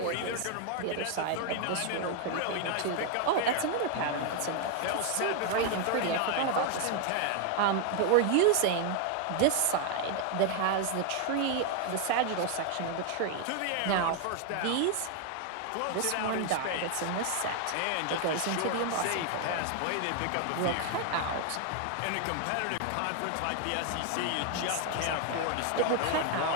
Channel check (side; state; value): both; different; correlation 0.00